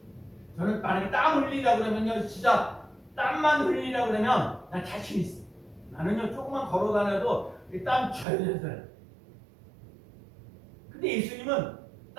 저는 만약에 땀 흘리라고 그러면요 진짜 땀만 흘리라고 그러면 난 자신 있어. 나는요 조금만 걸어 다녀도 땀 젖어요. 근데 예수님은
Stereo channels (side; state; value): left; drops out; at 8.2 s